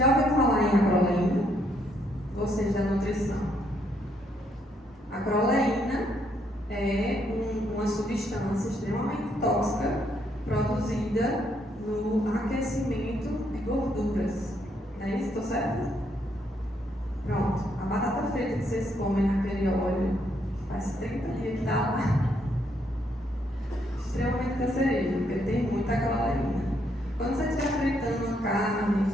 ouviu falar em acroleína? Vocês da nutrição. Acroleína é uma substância extremamente tóxica produzida no aquecimento de gorduras. Não é isso? Estou certo? Pronto. A batata frita que vocês comem naquele óleo, faz 30 dias que está lá. Extremamente cancerígeno, porque tem muita acroleína. Quando você estiver fritando uma carne,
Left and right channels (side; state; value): both; normal; correlation 0.73